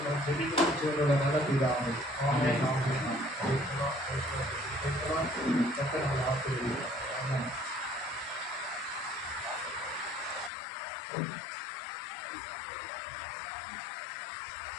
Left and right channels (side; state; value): right; drops out; at 10.5 s